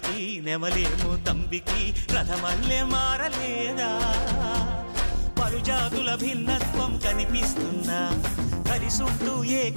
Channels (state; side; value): inverted; both; correlation -1.00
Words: నెమలేమో తంబికి రథమల్లే మారలేదా పలుజాతుల భిన్నత్వం కనిపిస్తున్నా కలిసుంటూ